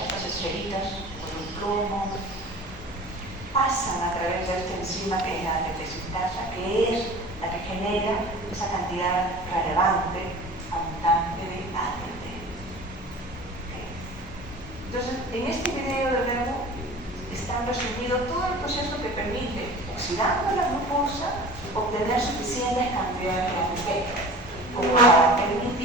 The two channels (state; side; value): normal; both; correlation 0.40